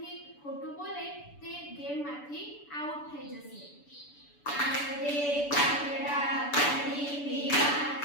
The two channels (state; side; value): late; right; 6.9 ms